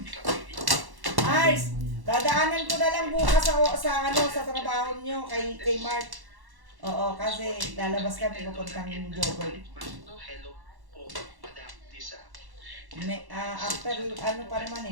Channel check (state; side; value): late; left; 1.1 ms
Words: Ars, dadaanan ko na lang bukas sa trabaho nyo kay Mark. Oo, kasi lalabas kami pupuntang jogger. After ano pa naman